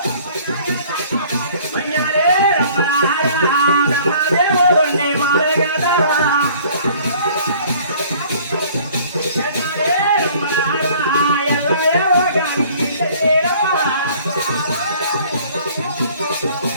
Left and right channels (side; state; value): both; inverted; correlation -0.53